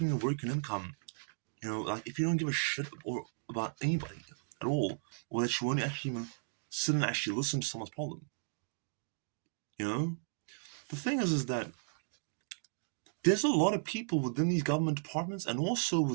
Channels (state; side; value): silent; left; digital silence